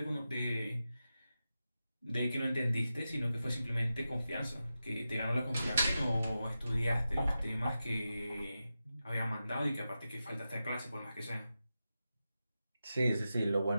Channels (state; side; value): inverted; both; correlation -0.91